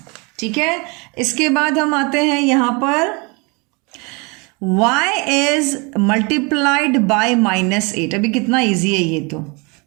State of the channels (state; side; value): quieter; left; 29.8 dB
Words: ठीक है। इसके बाद हम आते हैं यहाँ पर y इज मल्टीप्लाइड बाय -8, अभी कितना इजी है ये, तो